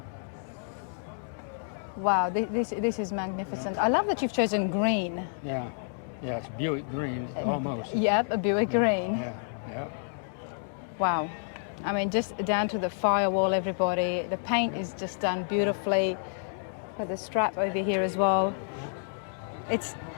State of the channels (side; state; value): right; silent; digital silence